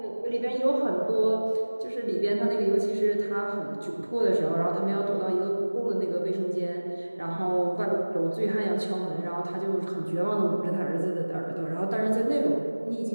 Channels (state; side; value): inverted; both; correlation -1.00